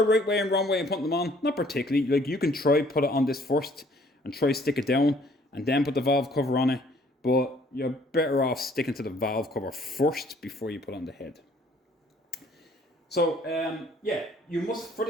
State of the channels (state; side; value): normal; both; correlation 0.60